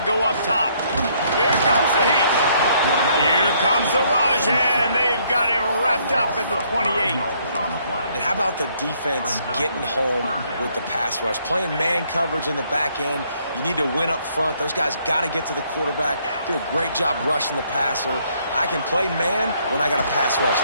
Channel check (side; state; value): both; inverted; correlation -0.67